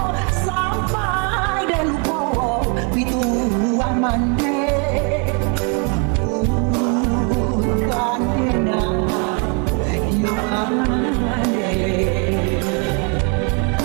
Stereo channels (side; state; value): left; quieter; 36.6 dB